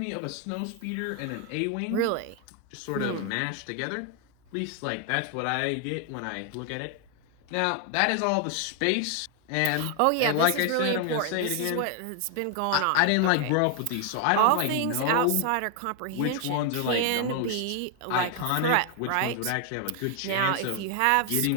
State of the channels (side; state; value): both; different; correlation 0.00